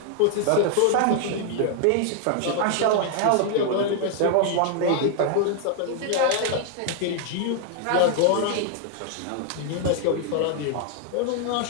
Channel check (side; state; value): both; different; correlation 0.00